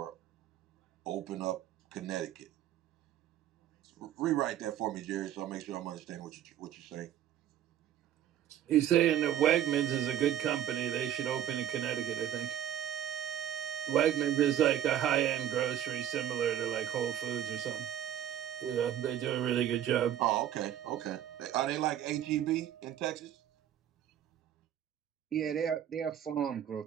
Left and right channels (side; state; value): left; quieter; 10.8 dB